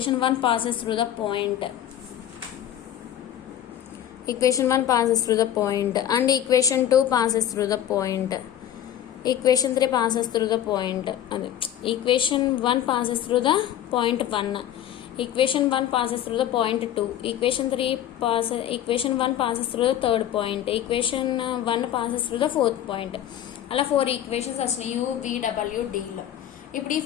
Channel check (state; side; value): quieter; right; 11.1 dB